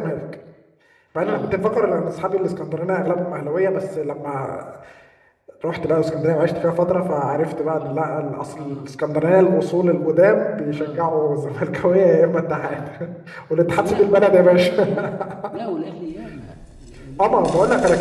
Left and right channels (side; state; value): both; identical; correlation 1.00